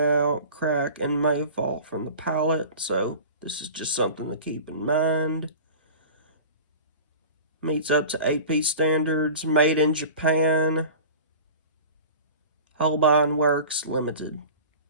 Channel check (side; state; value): both; inverted; correlation -0.38